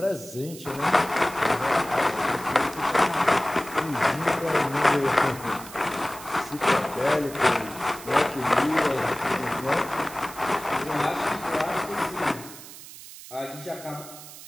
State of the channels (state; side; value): noise; right; hiss, 15 dB below the sound